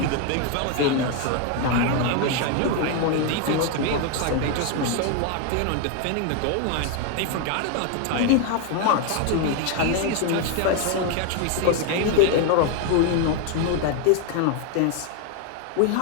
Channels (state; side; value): different; both; correlation 0.01